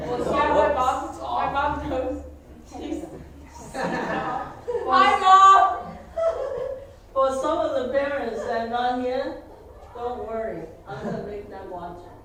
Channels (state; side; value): identical; both; correlation 1.00